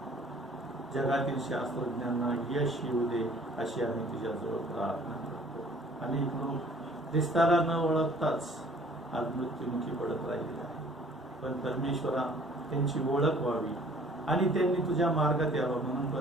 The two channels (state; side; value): normal; both; correlation 0.54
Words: जगातील शास्त्रज्ञांना यश येऊ दे अशी आम्ही तुझ्याजवळ प्रार्थना करतो। अनेक लोक ख्रिस्ताला न ओळखताच आज मृत्युमुखी पडत राहिले आहे, पण परमेश्वरा त्यांची ओळख व्हावी आणि त्यांनी तुझ्या मार्गात यावं म्हणून